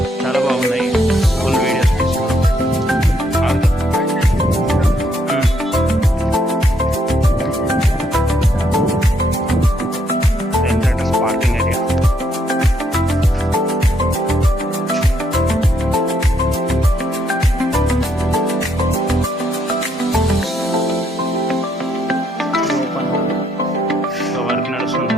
చాలా బాగున్నాయి. ఫుల్ వీడియోస్ తీసుకున్నాం. Parking area. వర్క్ నడుస్తుంది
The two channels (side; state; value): both; normal; correlation 0.73